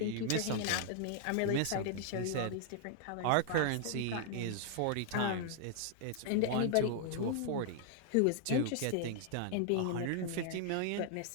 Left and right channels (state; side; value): different; both; correlation -0.01